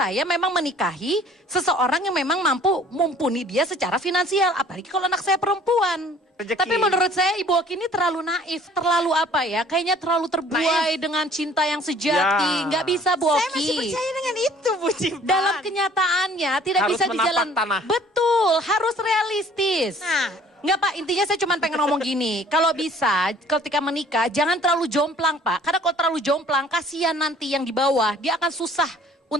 memang menikahi seseorang yang memang mampu mumpuni dia secara finansial. Apalagi kalau anak saya perempuan. Rezeki. Tapi menurut saya Ibu Oki ini terlalu naif, terlalu apa ya, kayaknya terlalu terbuai dengan cinta yang sejati. Nggak bisa Bu Oki. Saya masih percaya dengan itu Bu Cipan. Dalam kenyataannya tidak Harus bisa di menapak jalan. tanah. Betul, harus realistis. Nah. Nggak Pak, intinya saya cuma pengen ngomong gini. Kalau bisa, ketika menikah jangan terlalu jomplang Pak. Karena kalau terlalu jomplang, kasihan nanti yang di bawah. Dia akan susah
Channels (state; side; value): normal; both; correlation 0.54